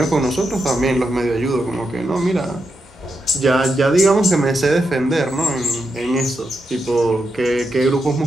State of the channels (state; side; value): normal; both; correlation 0.85